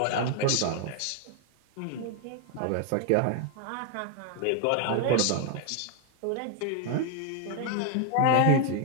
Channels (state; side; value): different; both; correlation 0.00